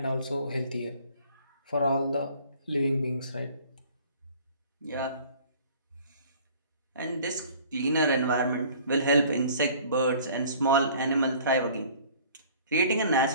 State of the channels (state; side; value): inverted; both; correlation -0.51